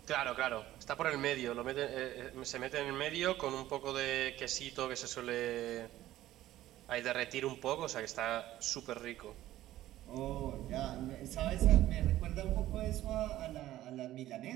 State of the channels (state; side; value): quieter; left; 14.4 dB